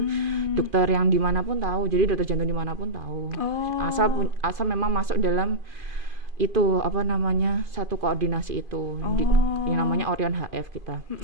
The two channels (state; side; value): late; left; 2.5 ms